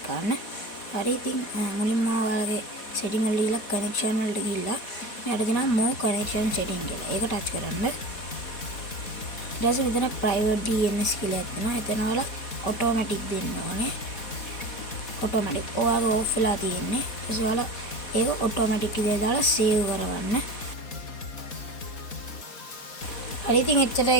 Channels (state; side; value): late; right; 4.1 ms